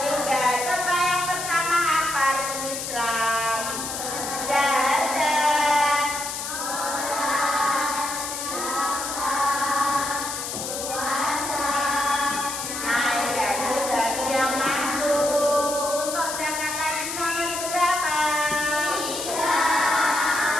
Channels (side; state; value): left; noise; hiss, 5 dB below the sound